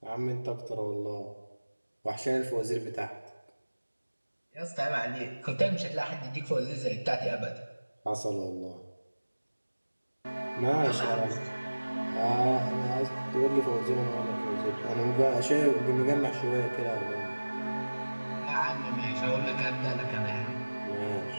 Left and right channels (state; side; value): inverted; both; correlation -1.00